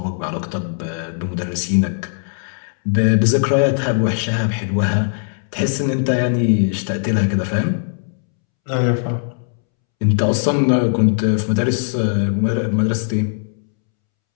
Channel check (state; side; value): silent; right; 66 dB below the other